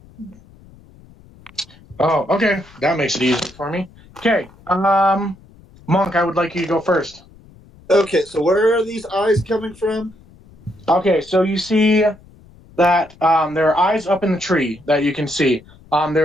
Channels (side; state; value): left; noise; rumble, 25 dB below the sound